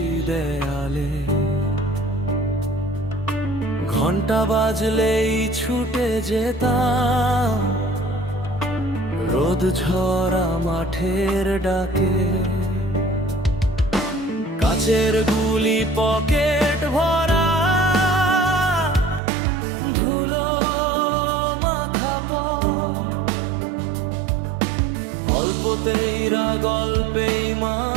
দেয়ালে ঘন্টা বাজলেই ছুটে যেতাম রোদ ঝরা মাঠের ডাকে। কাচের গুলি পকেট ভরা, ধুলো মাখা পথ, অল্পতেই গল্পেই মা,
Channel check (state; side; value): drops out; left; at 19.2 s